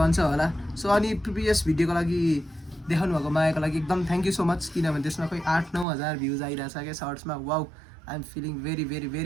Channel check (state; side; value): drops out; left; at 5.9 s